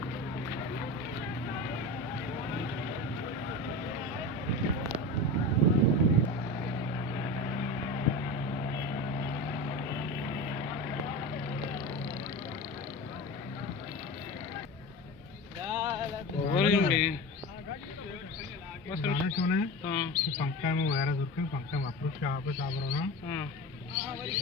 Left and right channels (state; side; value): normal; both; correlation 0.28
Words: पंखा में वगैरह जुर्के पंखा में अप्रूव क्या वापस आ रहा ना।